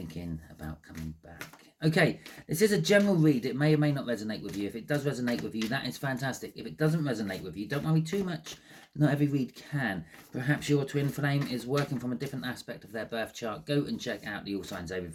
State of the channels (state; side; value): identical; both; correlation 1.00